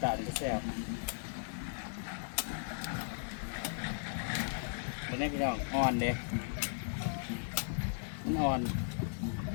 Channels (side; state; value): right; silent; 53 dB below the other